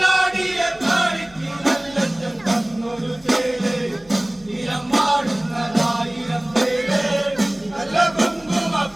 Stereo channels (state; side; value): noise; left; hum, 29 dB below the sound